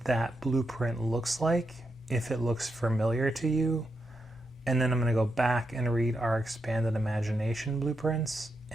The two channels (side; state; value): both; normal; correlation 0.84